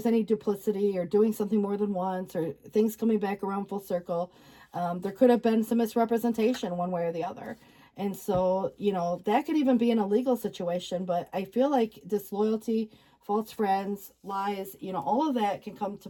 any duplicity or doing something more than once, or things coming back around full circle, there could have been some misrepresentation one way or the other. And so, you know, that could even be in a legal situation. But I feel like disloyalty, false friends, lies, you know, all of that can come to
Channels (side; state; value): both; identical; correlation 1.00